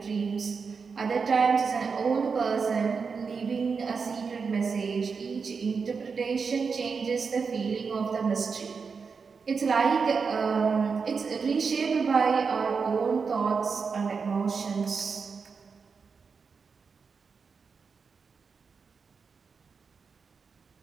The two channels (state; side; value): quieter; left; 5.3 dB